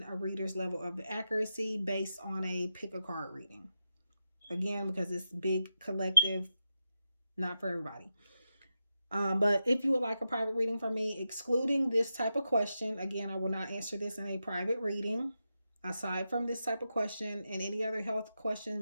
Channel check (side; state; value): both; inverted; correlation -0.88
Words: a reader's level of accuracy based on a pick a card reading. Again, because it's big collective, not for everybody. But if you would like a private reading from me, excluding this type of question, again, I will not answer this in a private reading. Aside from this type of question and any other health question,